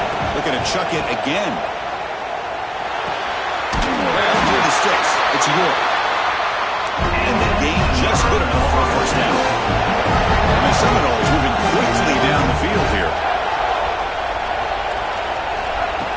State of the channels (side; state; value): both; identical; correlation 1.00